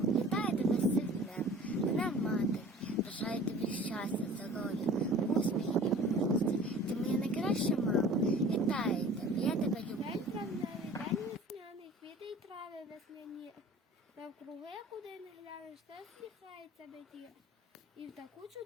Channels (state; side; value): normal; both; correlation 0.45